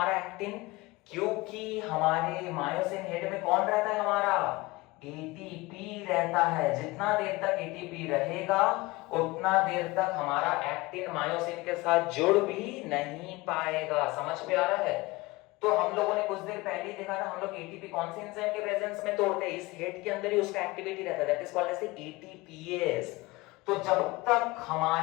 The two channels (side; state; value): right; quieter; 21.8 dB